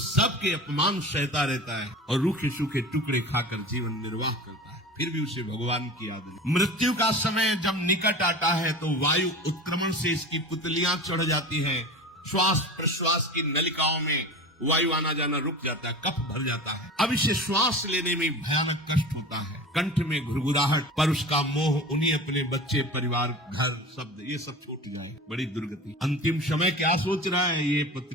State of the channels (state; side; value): normal; both; correlation 0.34